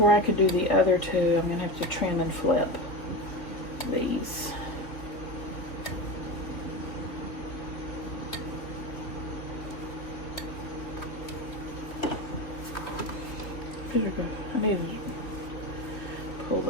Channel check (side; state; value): right; late; 3.4 ms